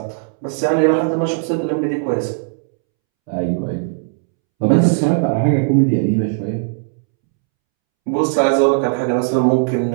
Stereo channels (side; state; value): left; silent; 68 dB below the other